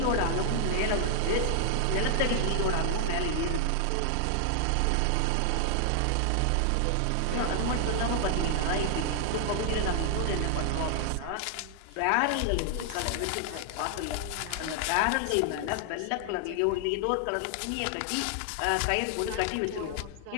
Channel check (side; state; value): both; different; correlation 0.00